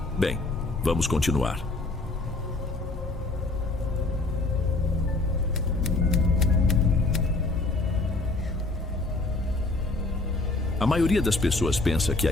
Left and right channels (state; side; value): quieter; right; 3.1 dB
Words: Bem, vamos continuar. A maioria das pessoas pensa que